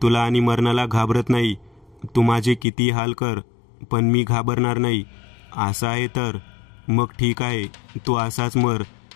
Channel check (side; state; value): right; drops out; at 2.7 s